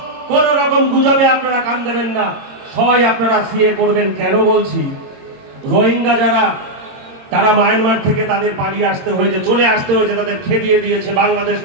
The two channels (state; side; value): late; left; 22 ms